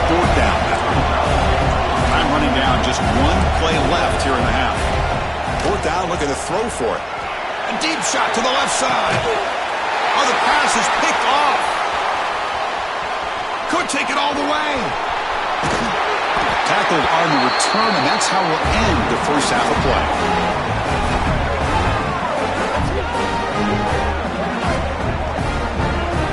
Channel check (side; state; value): both; identical; correlation 1.00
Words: fourth down. Time running down, just one play left here in the half. Fourth down, looking to throw for it. A deep shot to the left side. Oh, the pass is picked off. Could take it all the way. Tackled on the return, and that's how we'll end the first half of play.